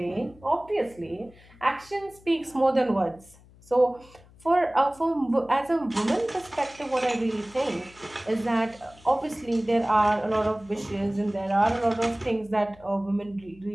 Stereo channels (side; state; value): left; noise; hum, 25 dB below the sound